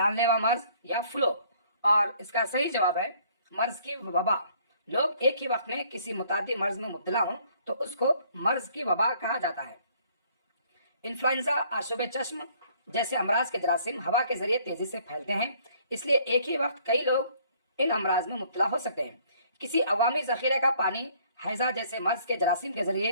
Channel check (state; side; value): inverted; both; correlation -0.60